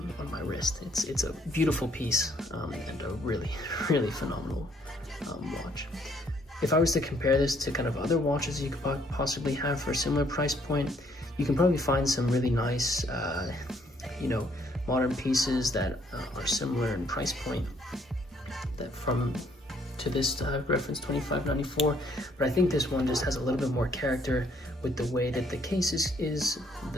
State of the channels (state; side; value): normal; both; correlation 0.66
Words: my wrist. It's a beautiful piece, and a really phenomenal watch. If I was to compare this to kind of other watches you could possibly have for a similar price point, you can probably find some really nice, you know, modern pieces that are similar in price point to this reference 2594, but I think this one just has a little bit more character with the way that the case is